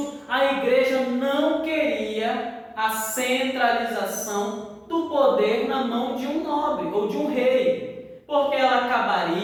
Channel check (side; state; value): both; identical; correlation 1.00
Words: a igreja não queria a centralização do poder na mão de um nobre ou de um rei, porque ela